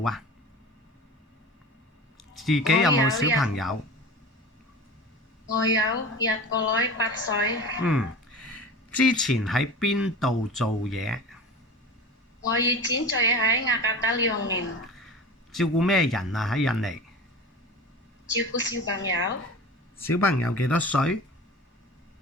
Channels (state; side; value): normal; both; correlation 0.34